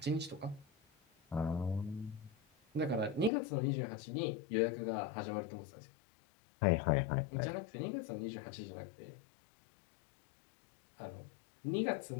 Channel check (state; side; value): drops out; right; at 3.3 s